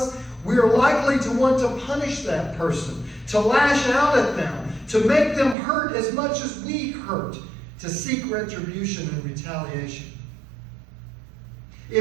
we are likely to want to punish that person, to lash out at them, to make them hurt as much as we hurt, to seek retribution and retaliation.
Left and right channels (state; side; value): drops out; left; at 5.6 s